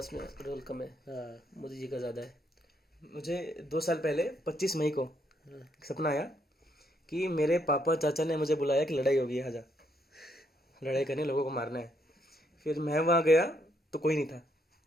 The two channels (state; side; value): normal; both; correlation 0.73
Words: रोल कम है, मोदी जी का ज्यादा है। मुझे 2 साल पहले 25 मई को सपना आया कि मेरे पापा चाचा ने मुझे बुलाया कि लड़ाई होगी, आजा लड़ाई करने, लोगों को मारना है। फिर मैं वहाँ गया तो कोई नहीं था,